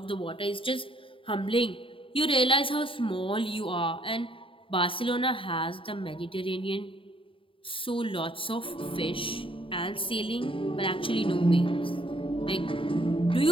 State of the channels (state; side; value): late; right; 0.25 ms